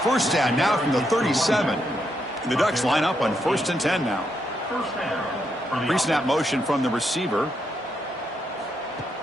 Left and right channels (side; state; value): both; normal; correlation 0.80